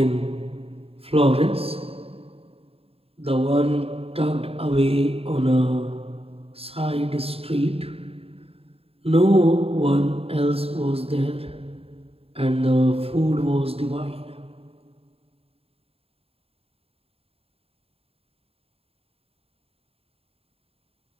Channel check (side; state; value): left; late; 0.28 ms